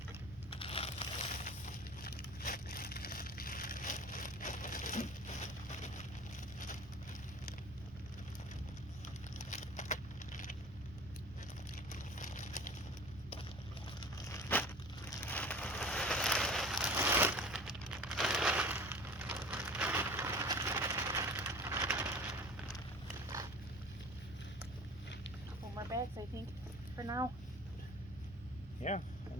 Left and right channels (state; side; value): normal; both; correlation 0.42